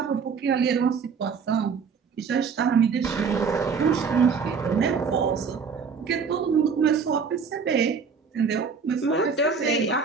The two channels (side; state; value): left; quieter; 5.7 dB